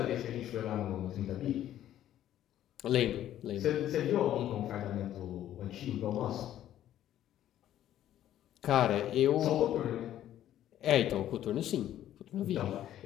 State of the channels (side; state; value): right; quieter; 12.0 dB